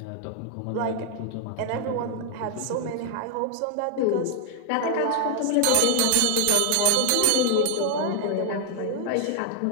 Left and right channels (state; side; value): different; both; correlation 0.01